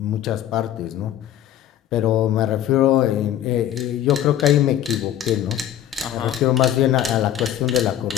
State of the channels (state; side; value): quieter; right; 11.3 dB